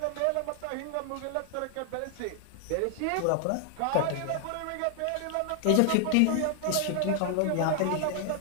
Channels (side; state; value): both; different; correlation 0.00